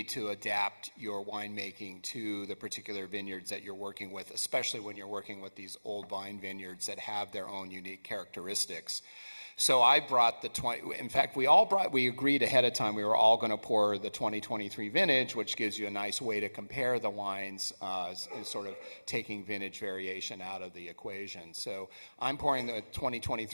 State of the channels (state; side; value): inverted; both; correlation -1.00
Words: to adapt your winemaking to the particular vineyards that you're working with, especially when you're working with these old vine vineyards that have their own unique characteristics. So I brought the 20, in fact, we agreed ahead of time, we were all going to pour the 2023 vintage, which gives you a nice way to compare the wines, sort of taking vintage variation out of the equation. So I'm pouring the